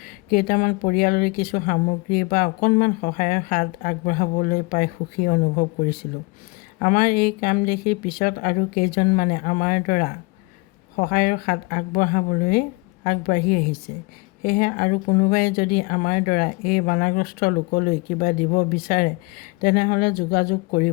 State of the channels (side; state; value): right; quieter; 26.9 dB